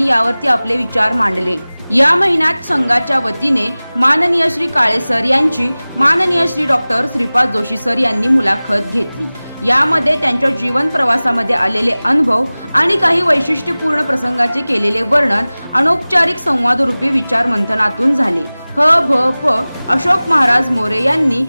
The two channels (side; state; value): both; inverted; correlation -0.99